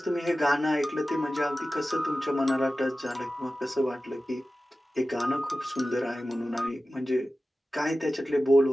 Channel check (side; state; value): both; normal; correlation 0.95